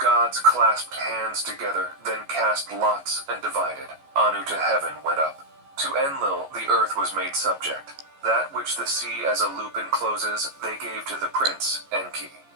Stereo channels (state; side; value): late; left; 14 ms